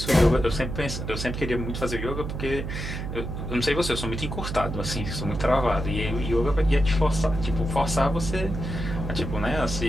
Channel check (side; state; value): right; noise; hum, 5 dB below the sound